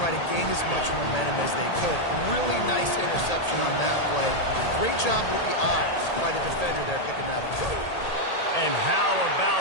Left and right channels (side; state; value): right; late; 1.8 ms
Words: try to gain as much momentum as they could. Really nice interception on that play. Great job with the eyes by the defender there picking that up. And how